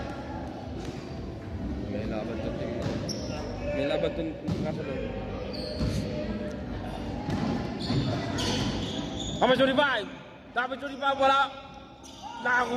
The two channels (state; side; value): identical; both; correlation 1.00